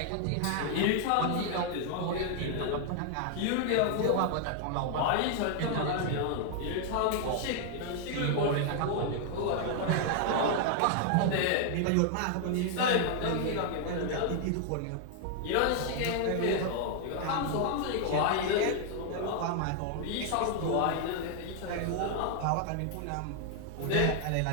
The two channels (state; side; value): different; both; correlation 0.00